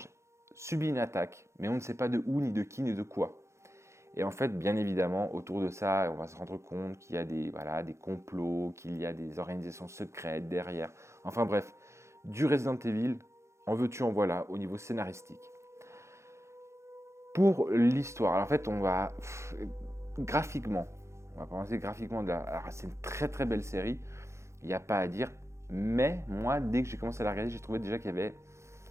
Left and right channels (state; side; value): late; left; 0.14 ms